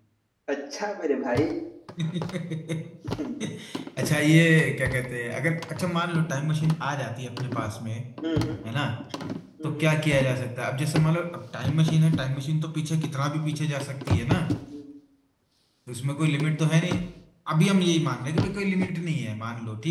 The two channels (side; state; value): both; identical; correlation 1.00